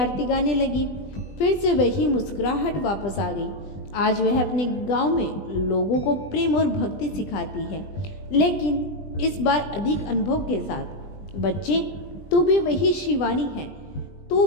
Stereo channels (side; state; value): right; late; 20 ms